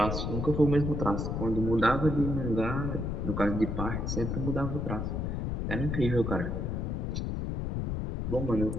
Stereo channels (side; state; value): left; noise; rumble, 1 dB below the sound